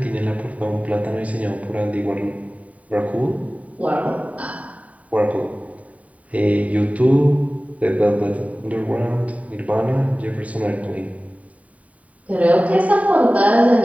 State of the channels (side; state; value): left; late; 0.069 ms